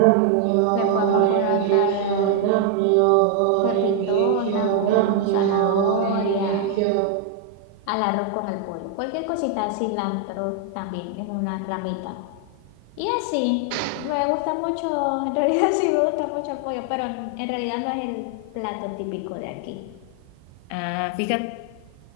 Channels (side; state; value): both; different; correlation 0.00